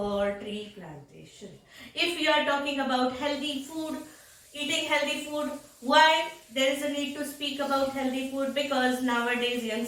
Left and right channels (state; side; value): identical; both; correlation 1.00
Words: tree plantation. If you are talking about healthy food, eating healthy food, why there is a need to speak about healthy food? Because nowadays